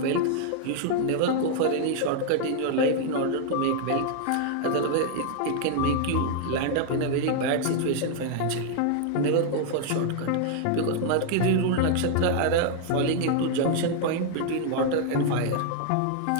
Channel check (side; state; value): both; different; correlation 0.00